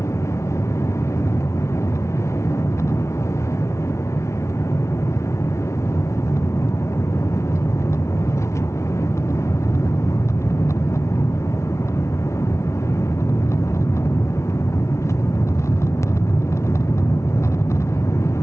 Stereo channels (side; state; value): right; late; 0.13 ms